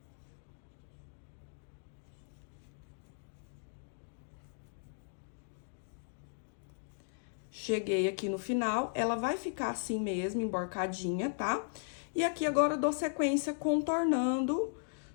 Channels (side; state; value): right; silent; digital silence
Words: Cheguei aqui no final, ela vai ficar assim mesmo, emborcadinha, tá? E aqui agora eu dou sequência contornando